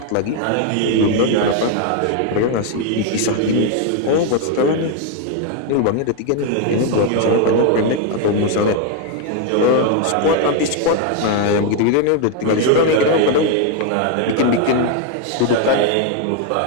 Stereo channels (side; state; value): both; different; correlation 0.01